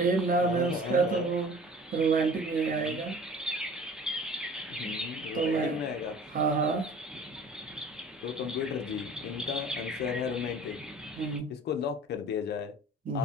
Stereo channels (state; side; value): normal; both; correlation 0.46